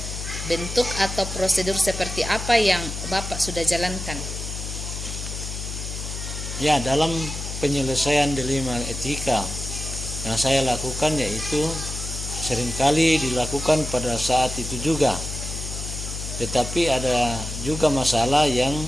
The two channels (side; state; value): left; noise; hum, 7 dB below the sound